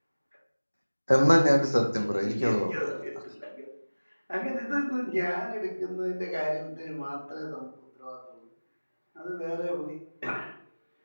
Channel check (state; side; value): inverted; both; correlation -1.00